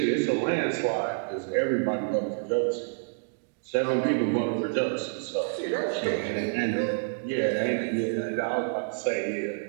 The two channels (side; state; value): left; silent; digital silence